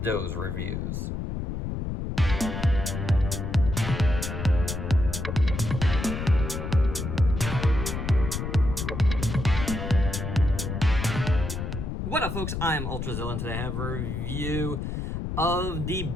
those reviews. What up, folks? I'm Ultrazilla, and today I have a review of the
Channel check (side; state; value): left; noise; rumble, 4 dB below the sound